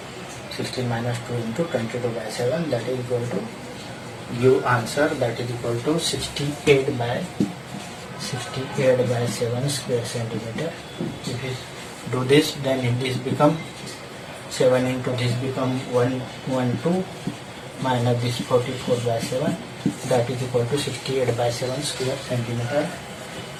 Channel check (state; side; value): identical; both; correlation 1.00